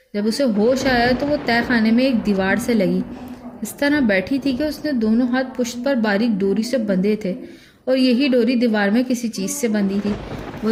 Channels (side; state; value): both; identical; correlation 1.00